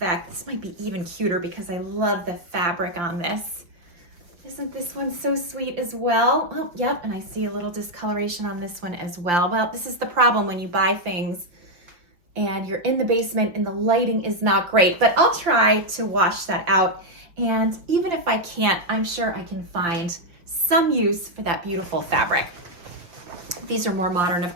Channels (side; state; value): left; late; 5.6 ms